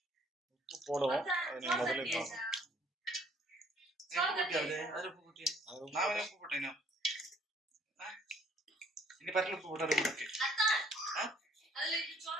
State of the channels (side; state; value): both; normal; correlation 0.61